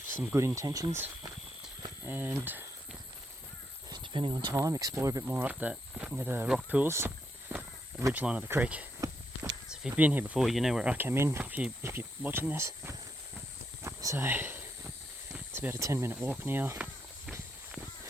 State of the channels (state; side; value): normal; both; correlation 0.79